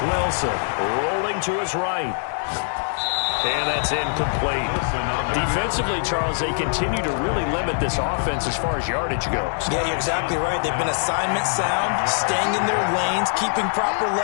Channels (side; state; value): right; silent; digital silence